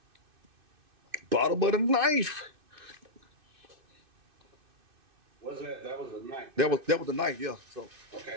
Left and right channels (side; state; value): left; late; 2.6 ms